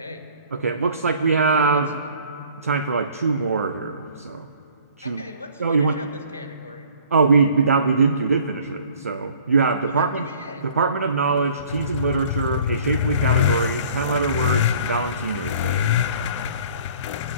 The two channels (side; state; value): both; inverted; correlation -0.53